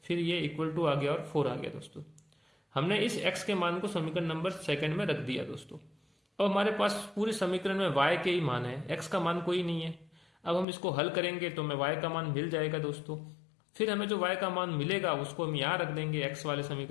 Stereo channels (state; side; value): drops out; right; at 10.7 s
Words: फिर ये इक्वल टू आ गया और 4 आ गया दोस्तों। हमने इस x के मान को समीकरण नंबर सेकंड में रख दिया दोस्तों। अब हमारे पास पूरे समीकरण में y के ही मान है, x का मान कोई नहीं है। अब हम इसको हल करेंगे तो हमें y का मान मिल जाएगा दोस्तों। फिर हमें जो y का मान मिलेगा उसको हम यहाँ रख देंगे x वाले